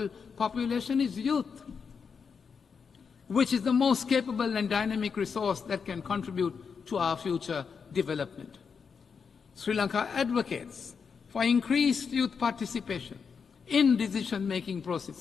population is youth, which is the most capable and dynamic resource that can contribute to our future development. Sri Lanka advocates for increased youth participation in decision-making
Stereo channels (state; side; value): quieter; right; 6.0 dB